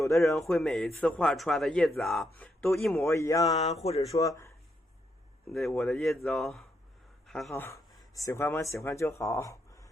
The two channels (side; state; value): both; normal; correlation 0.79